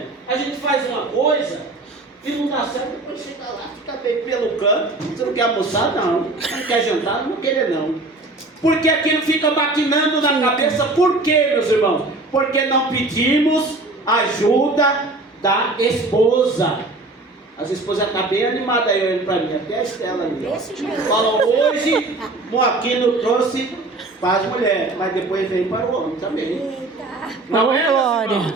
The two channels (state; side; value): quieter; left; 3.0 dB